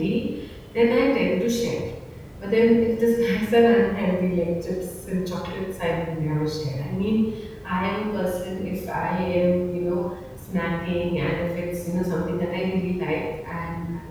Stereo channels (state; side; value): identical; both; correlation 1.00